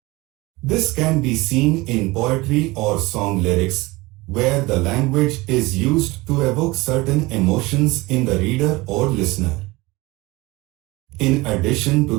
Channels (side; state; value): left; quieter; 21.8 dB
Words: This can be seen in poetry or song lyrics, where the language is used to evoke certain emotions in the reader or listener. In addition